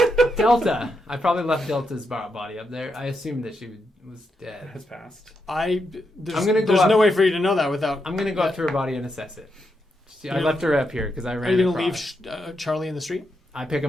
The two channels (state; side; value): normal; both; correlation 0.83